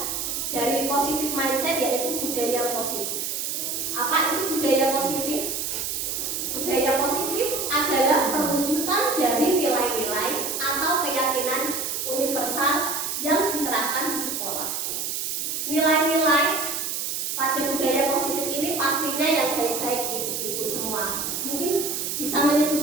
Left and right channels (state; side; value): noise; right; hiss, 2 dB below the sound